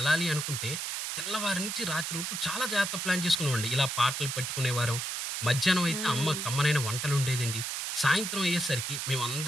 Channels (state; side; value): noise; right; hiss, 3 dB below the sound